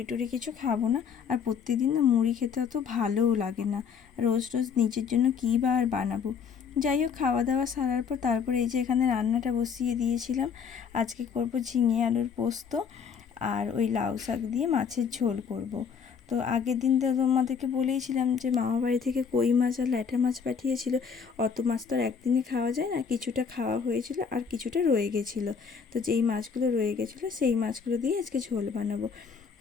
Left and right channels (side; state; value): right; quieter; 6.5 dB